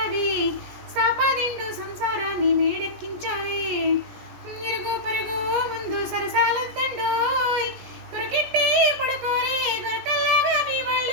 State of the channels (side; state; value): left; late; 17 ms